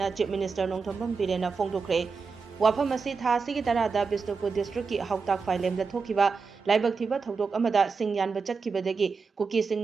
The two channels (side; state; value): left; quieter; 5.0 dB